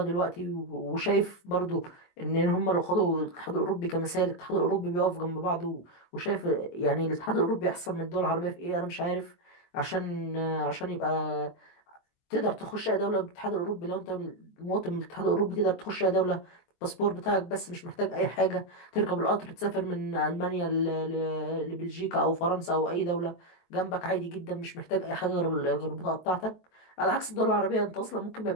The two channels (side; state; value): right; late; 23 ms